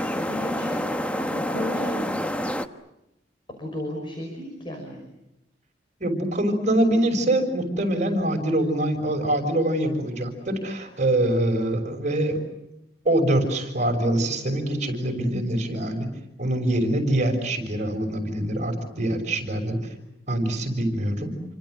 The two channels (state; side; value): normal; both; correlation 0.59